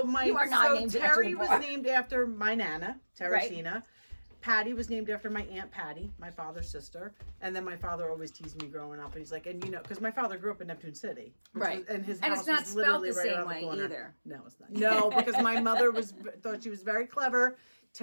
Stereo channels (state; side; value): inverted; both; correlation -1.00